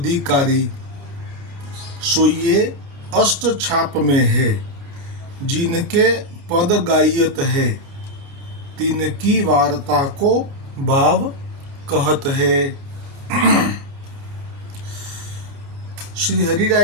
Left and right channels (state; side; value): late; left; 28 ms